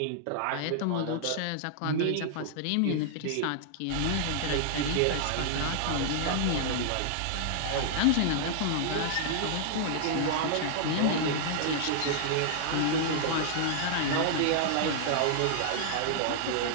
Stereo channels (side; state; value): both; different; correlation -0.01